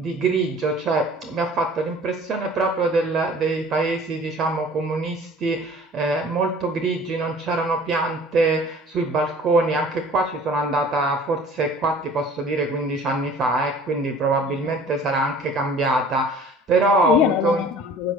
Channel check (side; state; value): both; normal; correlation 0.48